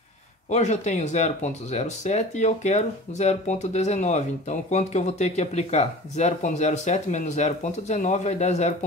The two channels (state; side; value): normal; both; correlation 0.39